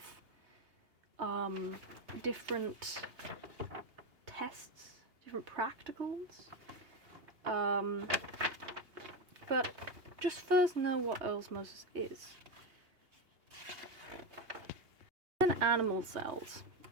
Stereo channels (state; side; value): late; left; 2.8 ms